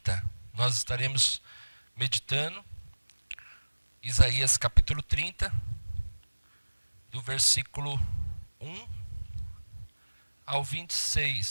Nós estaremos meditando Isaías capítulo 30, do versículo 1 ao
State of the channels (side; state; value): both; inverted; correlation -1.00